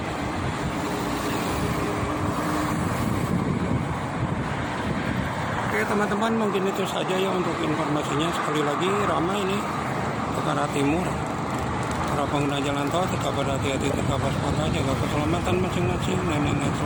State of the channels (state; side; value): identical; both; correlation 1.00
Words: Oke teman-teman, mungkin itu saja ya untuk informasinya. Sekali lagi ramai ini ke arah timur. Para pengguna jalan tol tetap berhati-hati, tetap waspada, jaga keselamatan masing-masing, dan ingat